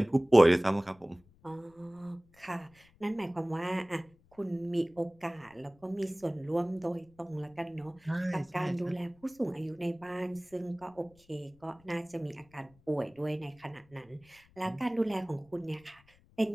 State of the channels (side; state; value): left; noise; rumble, 29 dB below the sound